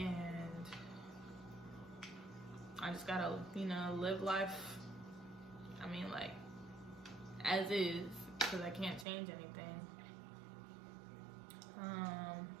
I just gotta, live life, like, as is, because I can't change anything. I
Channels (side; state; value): left; drops out; at 9.1 s